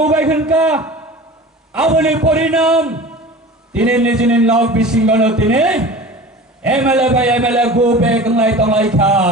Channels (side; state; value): both; normal; correlation 0.37